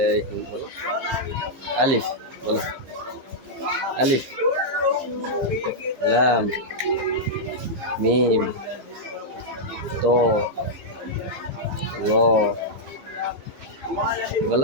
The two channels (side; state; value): left; late; 15 ms